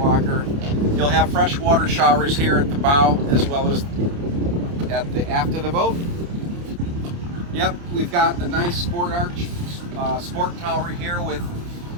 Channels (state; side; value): late; left; 29 ms